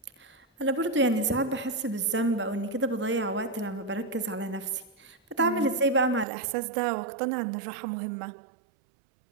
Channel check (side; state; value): left; drops out; at 6.2 s